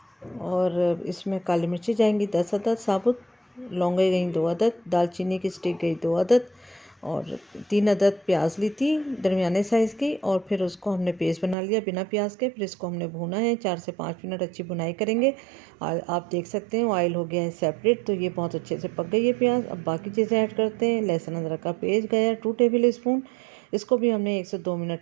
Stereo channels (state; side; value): drops out; left; at 11.6 s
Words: और इसमें काली मिर्ची जाएंगी 10 अदद साबुत, लौंगे गई 2 अदद, दालचीनी की स्टिक गई 2 अदद और 3 अदद प्याज ली थी दरमियाने साइज़ की। और फिर उसको हमने पेस्ट बना लिया बिना प्याज के। फिर इसको हमने भूना है 4 से 5 मिनट, अच्छी भुनाई करेंगे। और आप देख सकते हैं ऑयल हो गया है सेपरेट, तो ये बहुत अच्छे से पक गई है प्याज। अब बाकी चीज़ें ऐड करते हैं। लहसुन अदरक का पेस्ट गया 2 टेबल स्पून, इसको भी हमने 1 से 2 मिनट